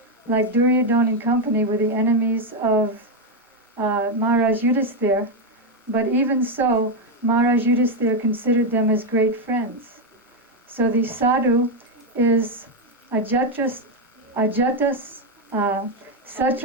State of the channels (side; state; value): both; normal; correlation 0.05